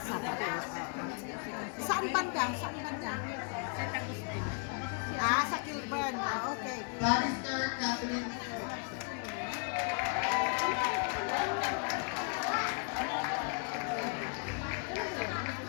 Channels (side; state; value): right; quieter; 38.2 dB